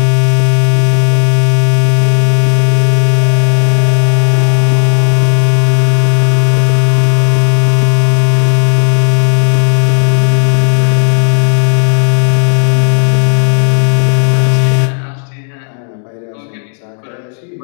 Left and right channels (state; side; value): silent; right; digital silence